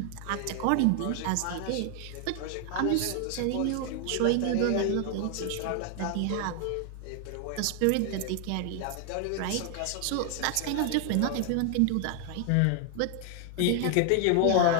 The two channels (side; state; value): both; different; correlation 0.00